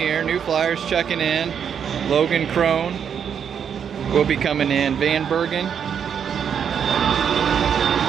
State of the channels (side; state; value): left; quieter; 7.7 dB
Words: New Flyers checking in. Logan Crone will be coming in. Van Bergen,